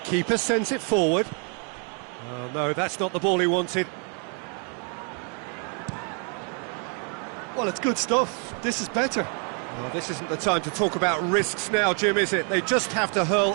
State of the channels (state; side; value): quieter; left; 39.9 dB